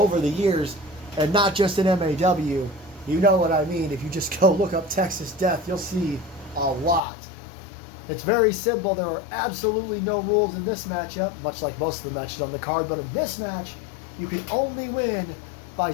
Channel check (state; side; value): drops out; right; at 7.0 s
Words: the years, and not just in MAW. You know what I mean. If you just go look up Texas Death, you'll see a lot. It's very simple. There are absolutely no rules in this matchup, much like most of the matches on the card, but in this match, you can only win by